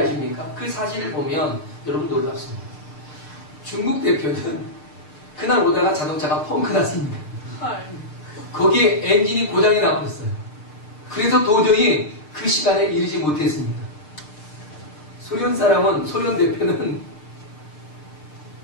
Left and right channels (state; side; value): late; right; 6.6 ms